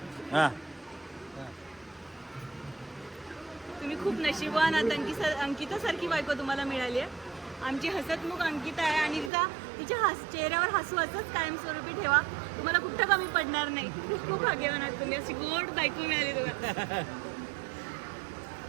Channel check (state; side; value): drops out; left; at 9.3 s